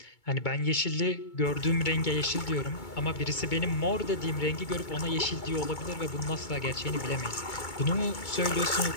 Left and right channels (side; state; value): right; late; 2.2 ms